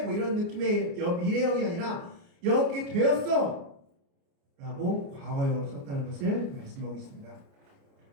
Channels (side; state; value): left; late; 29 ms